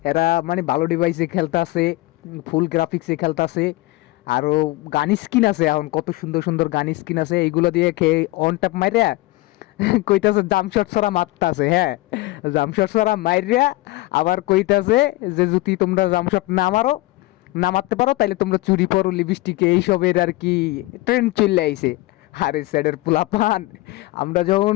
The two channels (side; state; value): right; quieter; 19.7 dB